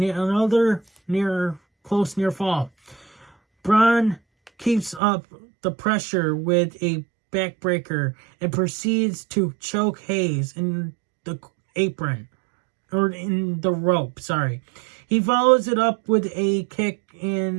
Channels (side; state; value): left; drops out; at 5.0 s